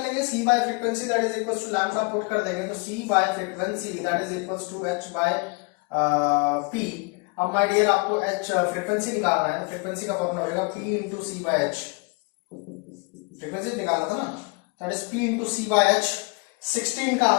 लेंगे, c by frequency that is equal to lambda put कर देंगे, तो c by frequency that is equal to h by p। अब माय डियर आपको h फ्रीक्वेंसी निकालना है, तो फ्रीक्वेंसी का फॉर्मूला रहेगा p into c by h, frequency निकालना था ना, that is p into c by h। 16 का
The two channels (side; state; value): right; quieter; 31.3 dB